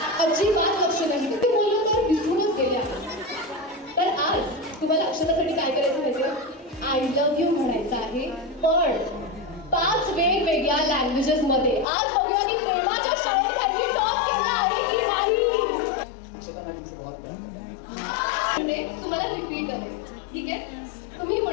अजिबात लक्ष नाही ते बोललो तर विसरूनच गेले आहे. तर आज तुम्हाला अक्षतासाठी काय करायचं माहिती आय लव्ह यू म्हणायचं आहे पण 5 वेगवेगळ्या लँग्वेजेस मध्ये. आज बघूया की प्रेमाच्या शाळेत त्यांनी टॉप केला आहे की नाही. म्हणजे तुम्हाला रिपीट करायचं ठीक आहे. तुम्ही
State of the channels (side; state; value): right; drops out; at 11.9 s